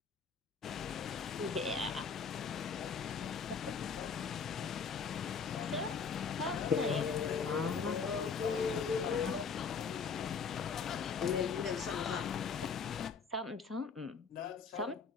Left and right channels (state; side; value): quieter; right; 5.7 dB